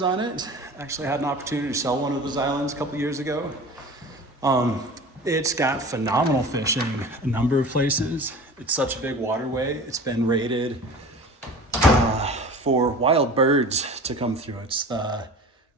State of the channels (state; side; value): normal; both; correlation 0.38